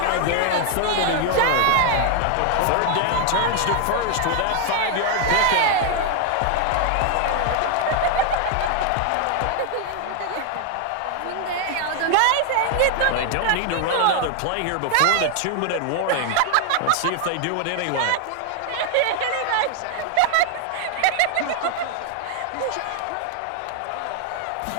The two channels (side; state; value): both; different; correlation 0.00